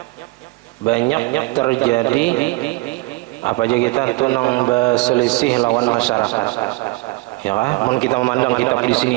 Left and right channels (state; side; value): quieter; left; 23.5 dB